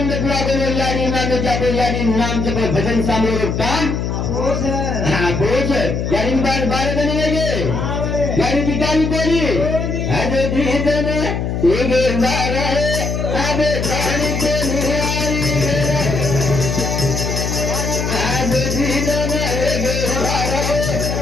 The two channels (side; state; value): left; noise; hum, 2 dB below the sound